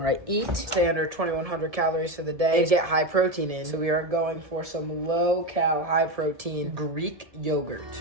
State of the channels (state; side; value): late; left; 1.7 ms